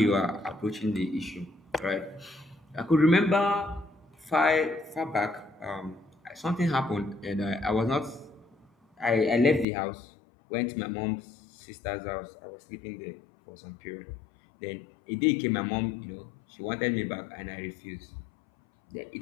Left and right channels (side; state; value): right; drops out; at 9.7 s